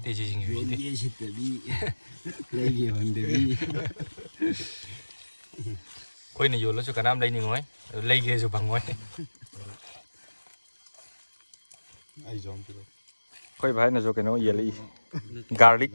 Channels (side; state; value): both; inverted; correlation -1.00